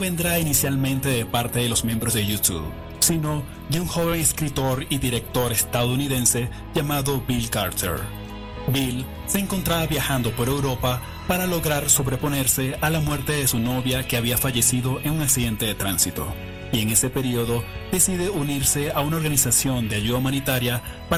inicialmente de parte de los miembros de U2, sino de un joven escritor y director estadounidense llamado Bill Carter. Bill se encontraba viajando por Europa para lograr sobreponerse a la muerte de su novia que había fallecido en un accidente de tránsito, y en ese periodo decide unirse a una organización de ayuda humanitaria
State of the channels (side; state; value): both; identical; correlation 1.00